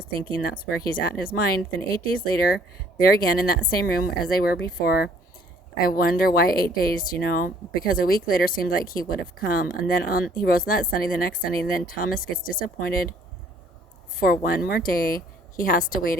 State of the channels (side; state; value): both; normal; correlation 0.61